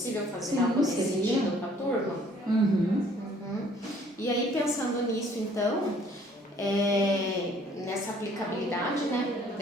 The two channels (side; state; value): both; normal; correlation 0.59